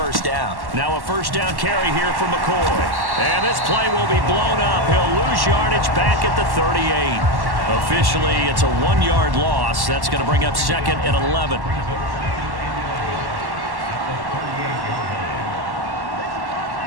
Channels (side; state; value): left; late; 1.1 ms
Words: down. Now a first down carry here for McCoy. And this play will be blown up. He'll lose yardage back at the 38. Officially, it's a 1-yard loss. That's going to bring up 2nd and 11.